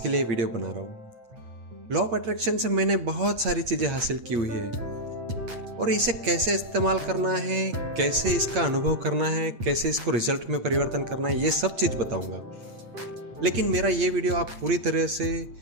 लिए वीडियो बना रहा हूँ। लॉ ऑफ अट्रैक्शन से मैंने बहुत सारी चीजें हासिल की हुई है और इसे कैसे इस्तेमाल करना है, कैसे इसका अनुभव करना है, कैसे इसको रिजल्ट में परिवर्तन करना है, ये सब चीज़ बताऊंगा। लेकिन मेरा ये वीडियो आप पूरी तरह से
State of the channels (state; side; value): late; left; 8.6 ms